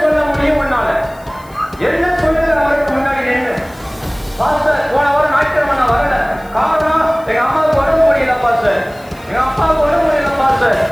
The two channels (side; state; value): left; noise; hiss, 26 dB below the sound